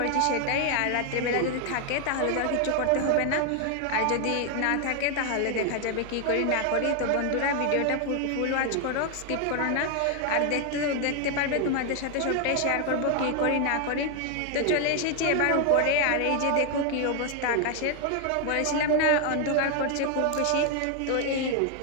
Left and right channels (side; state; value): both; different; correlation 0.01